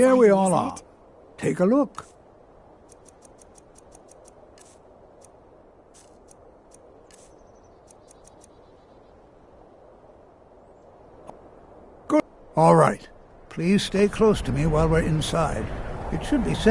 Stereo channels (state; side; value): identical; both; correlation 1.00